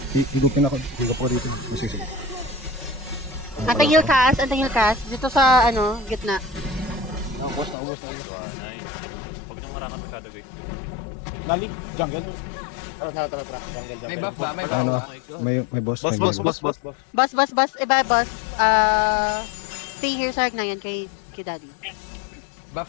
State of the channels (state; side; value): drops out; right; at 7.8 s